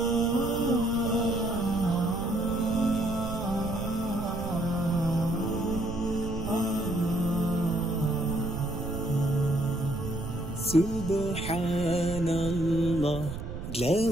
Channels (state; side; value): noise; right; rumble, 7 dB below the sound